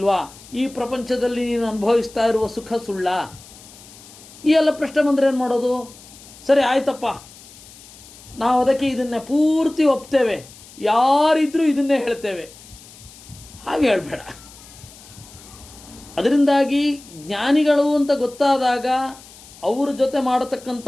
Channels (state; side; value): noise; left; hiss, 21 dB below the sound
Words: ಈ ಪ್ರಪಂಚದಲ್ಲಿ ನೀನು ಅನುಭವಿಸ್ತಾ ಇರುವ ಸುಖ ಸುಳ್ಳ? ಈ ಎಲ್ಲ ಪ್ರಶ್ನೆ ಬಂದರೆ ಏನು ಮಾಡೋದು? ಸರಿ ಆಯ್ತಪ್ಪ, ನಾವು ಅದಕ್ಕೆ ಇದನ್ನೇ ಪೂರ್ತಿ ಒಪ್ತೇವೆ, ಯಾರಿದ್ರೂ ಇದನ್ನೇ ಹೇಳ್ತೇವೆ. ಹಾಗೆ ಹೇಳಬೇಡ. ಅದರಿಂದಾಗಿ ಜ್ಞಾನಿಗಳು ಅಂತ ಗೊತ್ತಾದಾಗ ಅವರ ಜೊತೆ